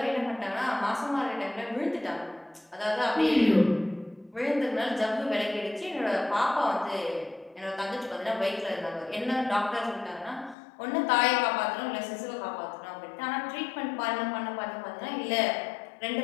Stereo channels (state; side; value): drops out; right; at 10.6 s